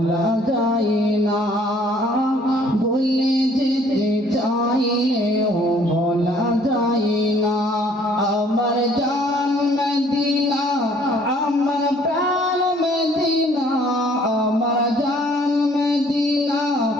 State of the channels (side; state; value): both; normal; correlation 0.59